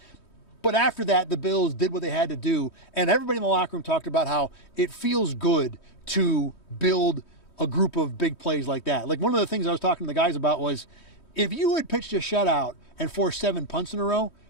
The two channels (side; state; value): right; late; 3.2 ms